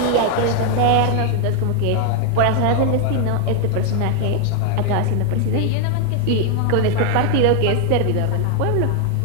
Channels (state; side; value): different; both; correlation 0.00